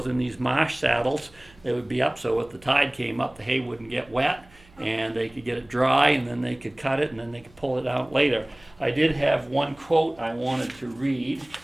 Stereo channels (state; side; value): noise; right; hum, 27 dB below the sound